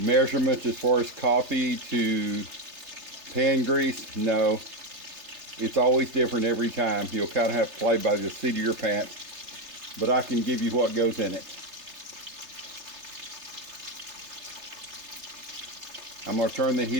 as far as coffee to pan grease? No. It's always different every time. You'll kind of have to play by the seat of your pants. But I can give you what goes in it. I'm going to turn the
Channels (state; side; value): late; left; 3.3 ms